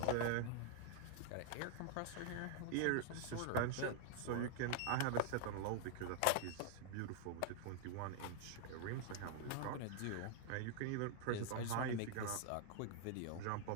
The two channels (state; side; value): different; both; correlation 0.00